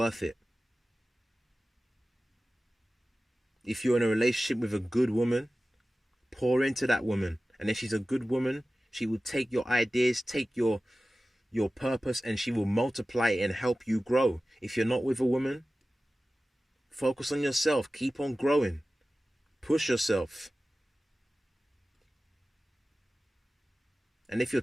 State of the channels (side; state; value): both; normal; correlation 0.96